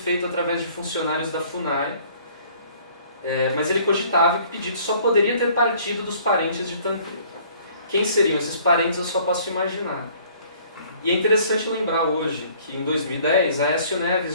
através de funcionários da FUNAI, mas ele cogitava que o pedido só poderia ter partido dos parentes de Tancredo. Quem seriam esses parentes eu só posso imaginar. E é interessante lembrar hoje que em 2010 Aécio Neves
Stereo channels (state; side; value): inverted; both; correlation -0.56